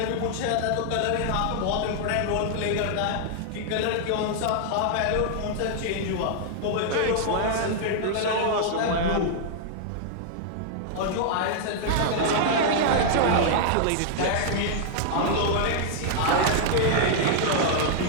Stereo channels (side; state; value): both; different; correlation -0.01